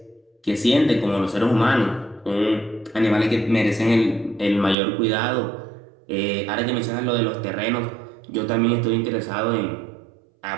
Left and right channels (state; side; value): drops out; left; at 4.8 s